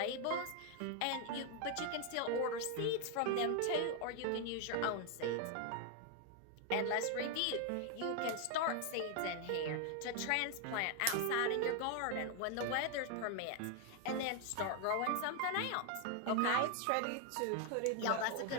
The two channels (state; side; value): different; both; correlation 0.01